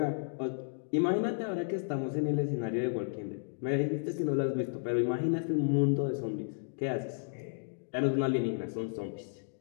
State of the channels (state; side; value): silent; right; digital silence